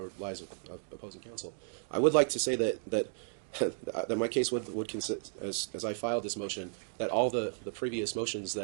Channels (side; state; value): left; silent; digital silence